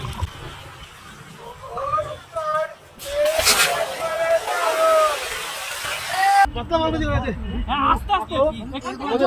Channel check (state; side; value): identical; both; correlation 1.00